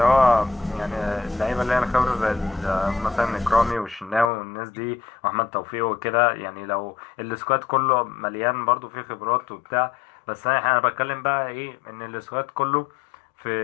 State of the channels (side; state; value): right; drops out; at 4.3 s